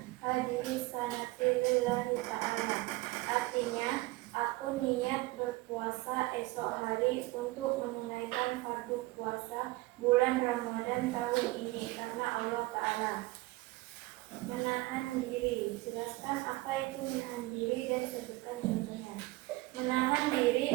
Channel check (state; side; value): quieter; left; 20.9 dB